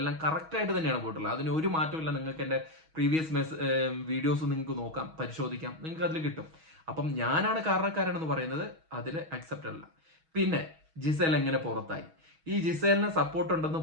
കറക്റ്റ് ആയിട്ട് തന്നെയാണ് പോയിട്ടുള്ളത്. അതിന് ഒരു മാറ്റമില്ല. നിങ്ങൾക്ക് എന്റെ പ്രീവിയസ് വീഡിയോസ് നിങ്ങൾക്ക് നോക്കാം, പരിശോധിക്കാം, നിങ്ങൾക്ക് അതിൽ കിട്ടും. അപ്പം ഞാനാണ് കാരണക്കാരനെന്ന് പറയുന്നത് അതിൽ അക്സെപ്റ്റ് അല്ല. പിന്നെ ജിസേൽ എങ്ങനെ പുറത്തായി? ഈ ജിസേലിനെ സപ്പോർട്ട് ഉണ്ടെന്ന്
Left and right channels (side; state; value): left; late; 6.3 ms